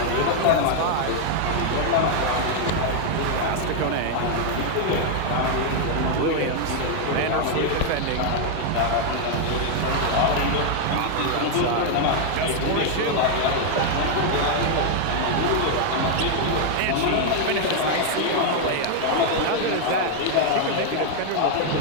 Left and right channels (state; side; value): different; both; correlation 0.00